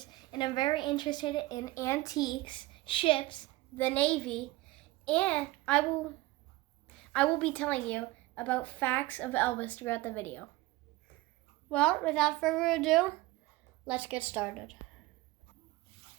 and I'm very interested in antiques, ships, the Navy, and I will be telling you about facts of Elvis throughout the video. Well, without further ado, let's get started.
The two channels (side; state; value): left; quieter; 19.6 dB